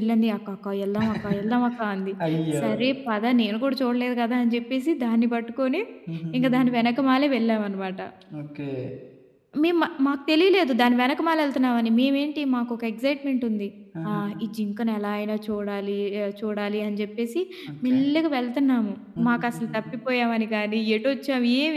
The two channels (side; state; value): both; identical; correlation 1.00